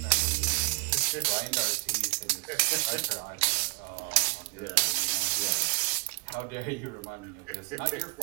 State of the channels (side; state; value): left; quieter; 33.8 dB